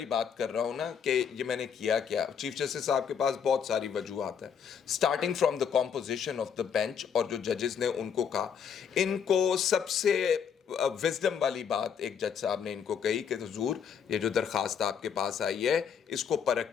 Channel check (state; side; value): quieter; right; 7.3 dB